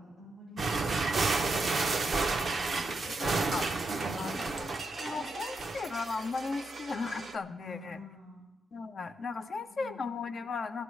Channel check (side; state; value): both; normal; correlation 0.83